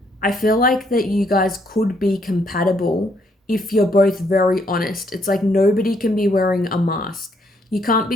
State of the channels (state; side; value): normal; both; correlation 0.71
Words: I feel like that you guys could be compatible if you're both very honest. It's like nobody can be wearing a mask. You can't